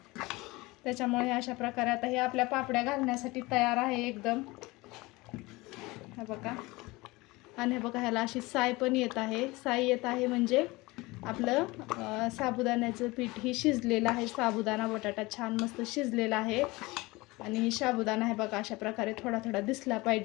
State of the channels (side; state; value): right; quieter; 22.2 dB